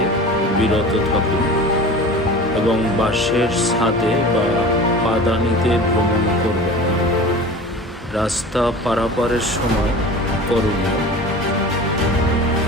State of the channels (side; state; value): both; normal; correlation 0.37